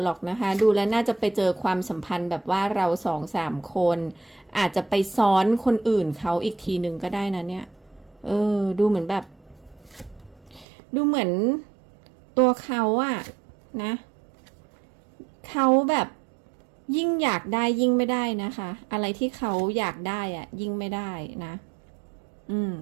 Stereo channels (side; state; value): left; drops out; at 10.7 s